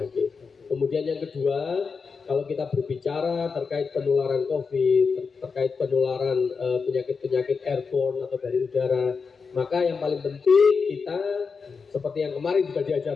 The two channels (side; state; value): right; quieter; 5.2 dB